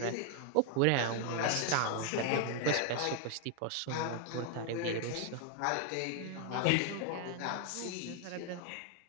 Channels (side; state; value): both; different; correlation 0.00